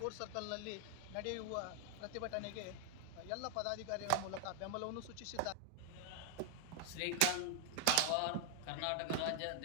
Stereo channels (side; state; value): both; different; correlation 0.00